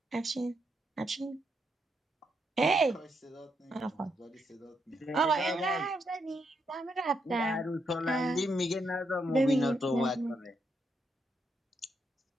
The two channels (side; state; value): both; normal; correlation 0.79